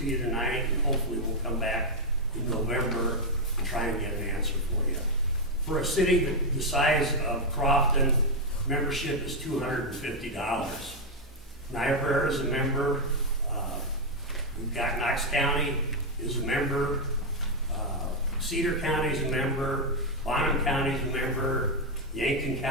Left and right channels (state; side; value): normal; both; correlation 0.02